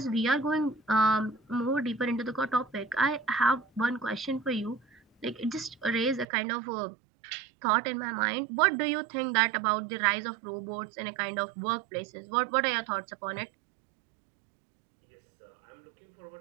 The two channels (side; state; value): left; drops out; at 6.2 s